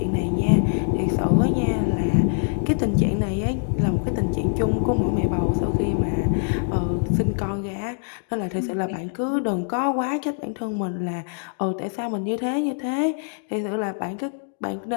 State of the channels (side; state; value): right; silent; 63 dB below the other